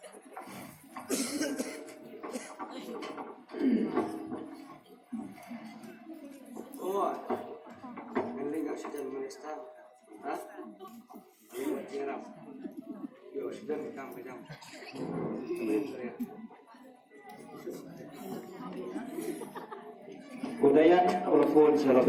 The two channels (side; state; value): both; identical; correlation 1.00